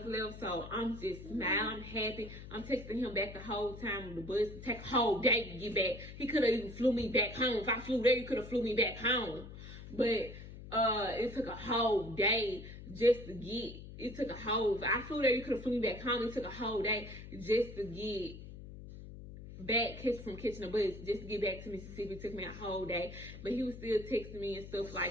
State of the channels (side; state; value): left; noise; hum, 13 dB below the sound